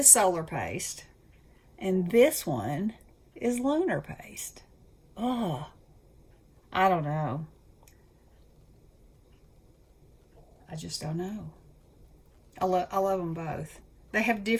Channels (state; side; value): identical; both; correlation 1.00